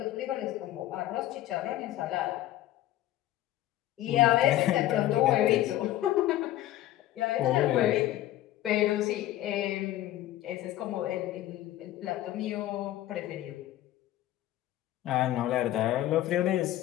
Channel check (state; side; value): quieter; right; 14.1 dB